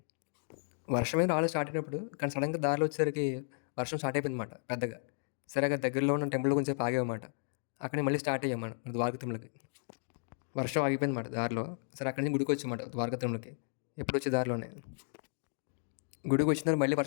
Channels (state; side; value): silent; right; digital silence